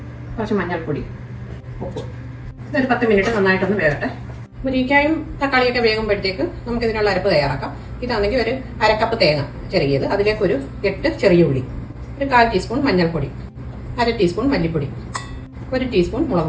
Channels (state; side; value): identical; both; correlation 1.00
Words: കുറച്ച് മഞ്ഞൾപ്പൊടി, ഉപ്പ്. ഇതൊരു 10 മിനിറ്റ് നന്നായിട്ടൊന്ന് വേകട്ടെ. മുരിങ്ങയ്ക്കായും തക്കാളിയൊക്കെ വേകുമ്പോഴത്തേക്ക് നമുക്കിതിനുള്ള അരപ്പ് തയ്യാറാക്കാം. ഇതാണെങ്കിൽ ഒരു 1/2 കപ്പ് തേങ്ങ ചിരകിയത്, അതിലേക്ക് ഒരു 8 ചെറിയ ഉള്ളി, ഒരു 1/4 ടീസ്പൂൺ മഞ്ഞൾപ്പൊടി, 1/2 ടീസ്പൂൺ മല്ലിപ്പൊടി, 1 ടീസ്പൂൺ